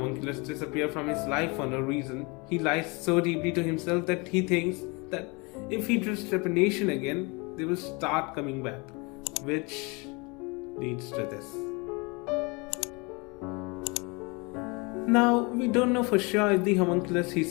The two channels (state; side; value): quieter; right; 28.6 dB